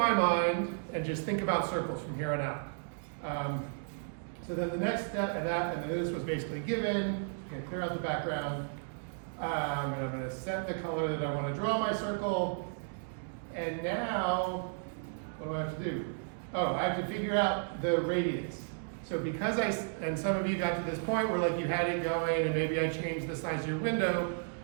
mind and just think about circles from here on out. So then the next step, and then this was basically given. I'm going to clear out the background, and I'm going to set the color that I want to draw my circle. And now, what do I have to do? Oh, I have to figure out the radius. So because and some of you got to this point where like you had it going, and maybe I changed the size of your window,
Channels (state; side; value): silent; left; digital silence